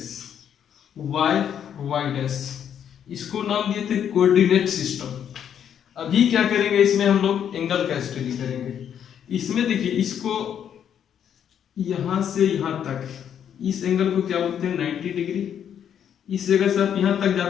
वाई डैश, इसको नाम दिए थे कोऑर्डिनेट सिस्टम। अभी क्या करेंगे, इसमें हम लोग एंगल का स्टडी करेंगे। इसमें देखिए, इसको यहां से यहां तक, इस एंगल को क्या बोलते हैं 90 डिग्री। इस जगह से आप यहां तक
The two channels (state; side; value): quieter; right; 8.9 dB